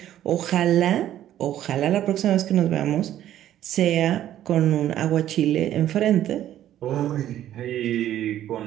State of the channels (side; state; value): left; quieter; 12.0 dB